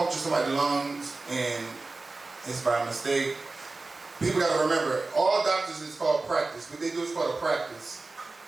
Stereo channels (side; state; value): left; quieter; 3.5 dB